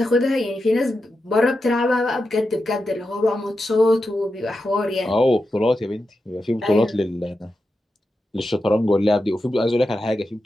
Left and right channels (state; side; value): normal; both; correlation 0.89